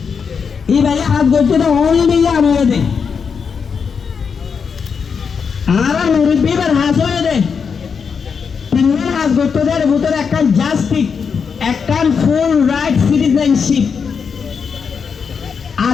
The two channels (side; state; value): right; quieter; 6.1 dB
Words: এই ভাইয়া হাস গুজিলা ওই নিয়া আনো দে আরা মুরব্বি বার হাস হয়ে দে তিনজন হাস গুজতে দে ভিতরে একটা জাস্টিস একটা ফুল রাইট সিটিজেনশিপ